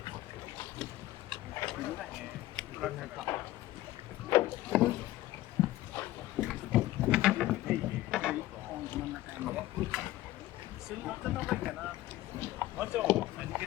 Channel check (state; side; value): quieter; right; 16.0 dB